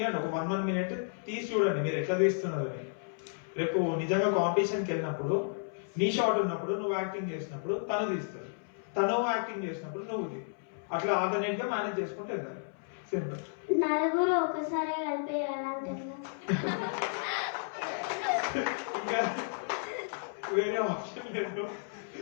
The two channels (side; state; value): right; silent; 56 dB below the other